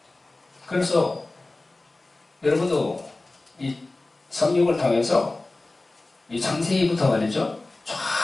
그래서 여러분도 이 성경을 통해서 이 창세기부터 말이죠.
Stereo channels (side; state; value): right; quieter; 3.0 dB